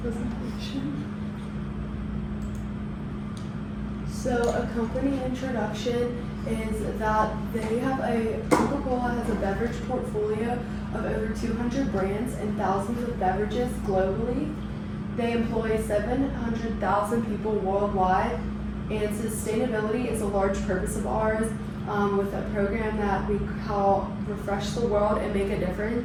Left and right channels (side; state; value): both; identical; correlation 1.00